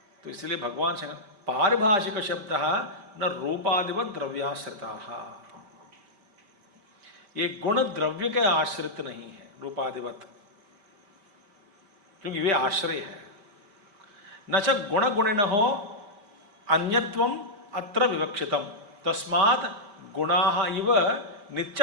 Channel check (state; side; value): late; left; 5.1 ms